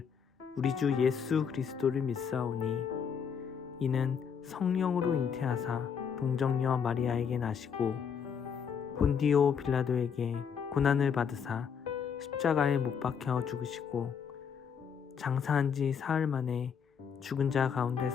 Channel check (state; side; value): quieter; right; 7.0 dB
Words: 우리 주 예수 그리스도를 믿사오니 이는 성령으로 잉태하사 동정녀 마리아에게 나시고 본디오 빌라도에게 고난을 받으사 십자가에 못 박혀 죽으시고 장사한 지 사흘 만에 죽은 자